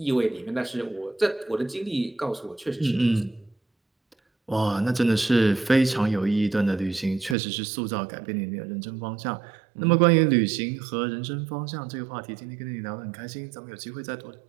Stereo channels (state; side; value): drops out; left; at 7.4 s